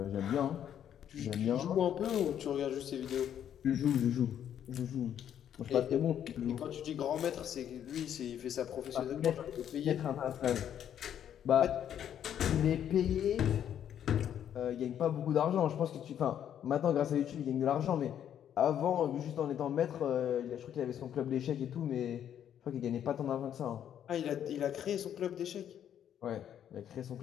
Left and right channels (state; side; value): quieter; right; 9.8 dB